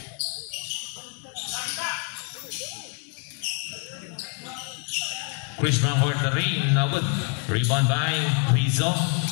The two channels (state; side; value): quieter; right; 33.8 dB